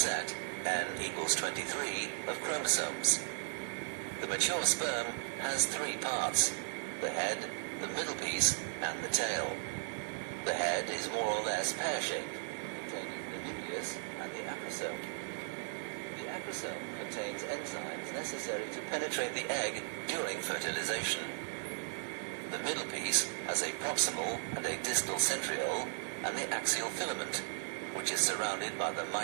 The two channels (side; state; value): left; silent; digital silence